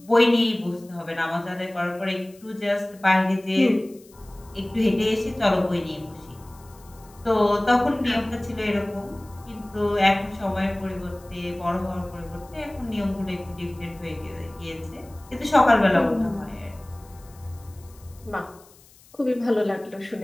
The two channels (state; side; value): noise; left; hiss, 26 dB below the sound